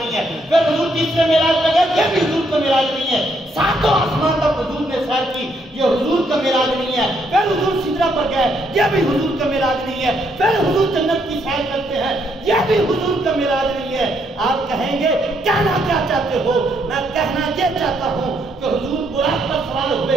है। फिर हुजूर तीसरे मेराज पर गए, ये भी हुजूर का मेराज नहीं है। सातों आसमान तक हुजूर ने सैर की, ये हुजूर का मेराज नहीं है। फिर हुजूर सिदरा पर गए, ये भी हुजूर का मेराज नहीं है। फिर हुजूर जन्नत की सैर करते हैं, ये भी हुजूर का मेराज नहीं है। आप कहेंगे कहना क्या चाहते हो? मैं कहना ये चाहता हूँ कि हुजूर बुराक पर सवार हुए,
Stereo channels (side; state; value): both; normal; correlation 0.73